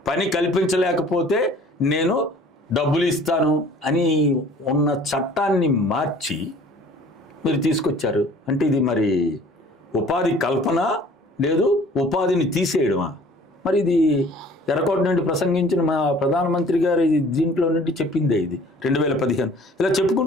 పని కల్పించలేకపోతే నేను డబ్బులు ఇస్తాను అని ఉన్న చట్టాన్ని మార్చి మీరు తీసుకొచ్చారు. అంటే ఇది మరి ఉపాధి కల్పన లేదు, ఉపాధిని తీసేయడమా? మరి ఇది ఎర్రకోట నుండి ప్రసంగించిన మా ప్రధానమంత్రి గారు దీంట్లో నుండి చెప్పిందే ఇది 2015. ఇలా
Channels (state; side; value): normal; both; correlation 0.50